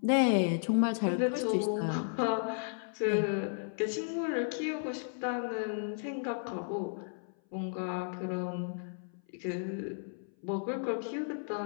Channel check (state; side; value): silent; right; 55 dB below the other